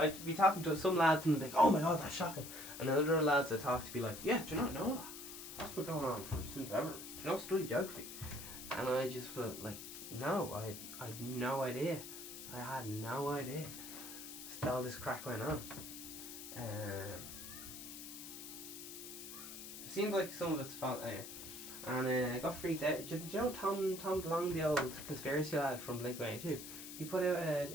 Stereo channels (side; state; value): left; noise; hiss, 11 dB below the sound